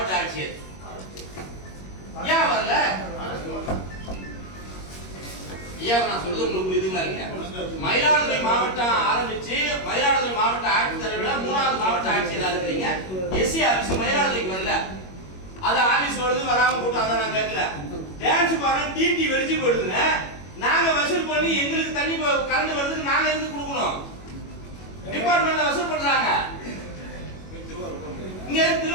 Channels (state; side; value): late; right; 21 ms